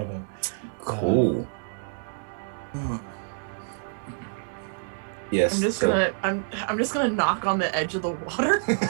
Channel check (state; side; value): silent; left; digital silence